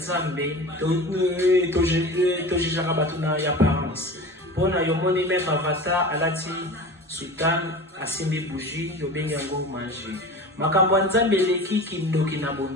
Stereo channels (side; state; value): both; normal; correlation 0.35